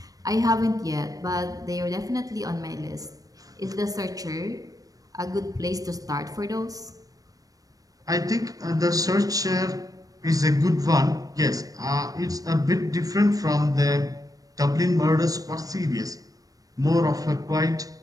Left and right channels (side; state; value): left; late; 0.17 ms